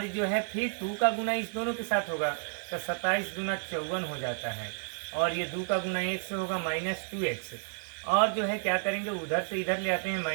जो है फिर 2 का गुना इस दोनों के साथ होगा तो 27 दूना 54 हो जाता है, और ये 2 का गुना 1 से होगा -2x, और जो है क्या करेंगे उधर से इधर ले आते हैं,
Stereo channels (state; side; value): silent; left; 57 dB below the other